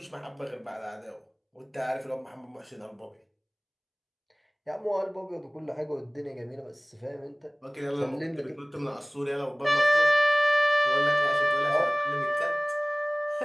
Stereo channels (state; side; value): identical; both; correlation 1.00